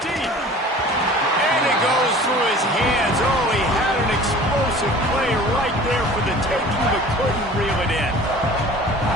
And it goes through his hands. Oh, he had an explosive play right there for the taking, but couldn't reel it in.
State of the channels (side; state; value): both; normal; correlation 0.44